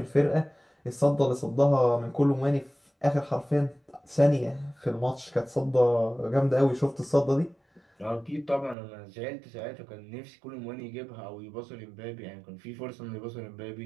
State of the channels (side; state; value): left; drops out; at 8.8 s